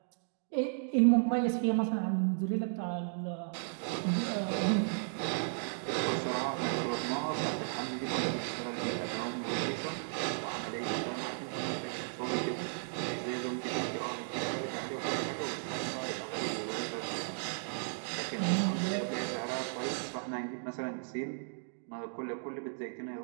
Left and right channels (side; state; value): left; silent; digital silence